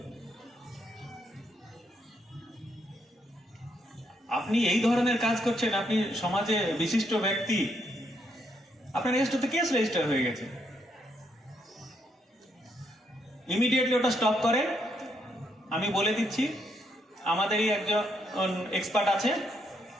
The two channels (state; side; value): normal; both; correlation 0.75